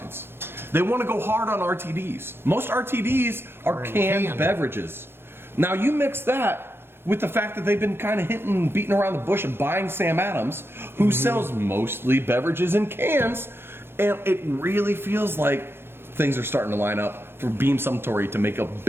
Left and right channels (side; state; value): left; late; 0.11 ms